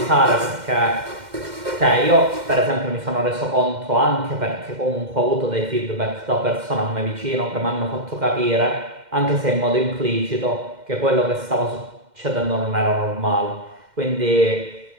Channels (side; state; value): left; late; 2.1 ms